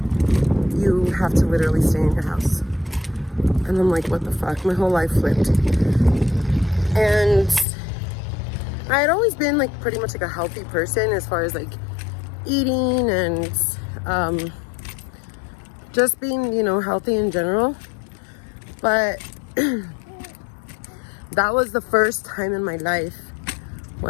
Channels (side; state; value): right; drops out; at 7.7 s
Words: you have to literally stay in your house. And I'm like, what the fuck? My whole life flipped. And I had always been like pretty much like a healthy person as far as like eating and just being, you know, healthy in general. But that was the first time in my life